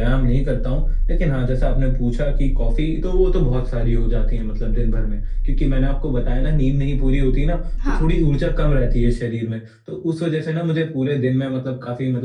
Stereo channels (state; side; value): identical; both; correlation 1.00